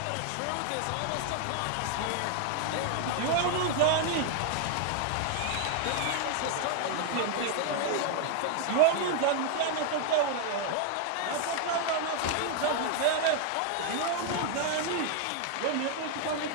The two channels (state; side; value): different; both; correlation 0.00